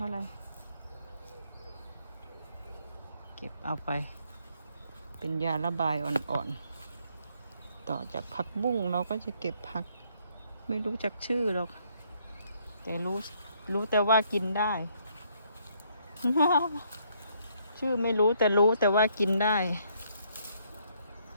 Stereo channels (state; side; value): inverted; both; correlation -0.69